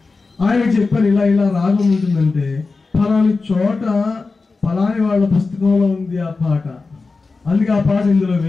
ఆయన చెప్పారు, ఇలా రాగం ఉంటుందంటే ఫలాని చోట ఫలాని వాళ్ళ పుస్తకంలో ఉంది ఆ పాట, అందుకే ఆ పాట ఇందులో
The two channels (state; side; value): quieter; right; 4.0 dB